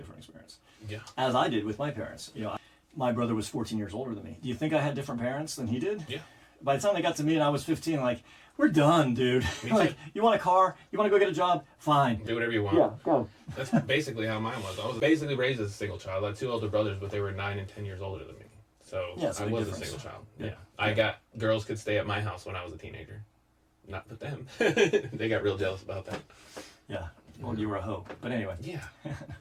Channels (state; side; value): identical; both; correlation 1.00